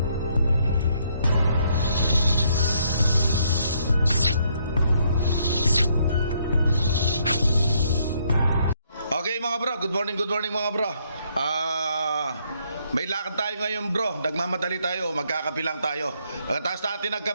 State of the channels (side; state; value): both; inverted; correlation -0.70